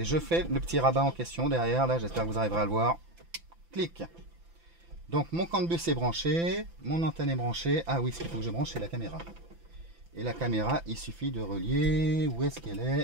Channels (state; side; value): late; left; 5.9 ms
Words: je fais le petit rabat en question derrière, là, j'espère que vous arriverez à le voir. Clic. Donc mon CAN bus est branché, mon antenne est branchée. Ah oui, ce qu'il faut que je branche, c'est la caméra. Et la caméra, il suffit de relier. Où est-ce qu'elle